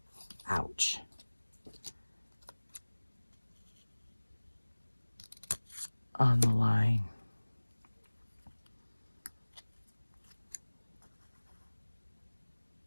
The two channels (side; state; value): both; inverted; correlation -1.00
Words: Ouch. On the line.